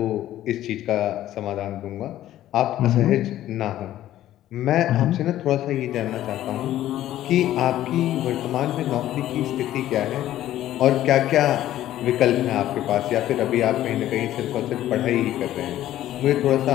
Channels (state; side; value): quieter; right; 13.3 dB